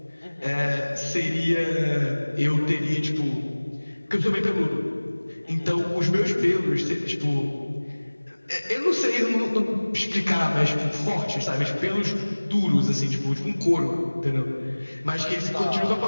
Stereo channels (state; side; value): inverted; both; correlation -1.00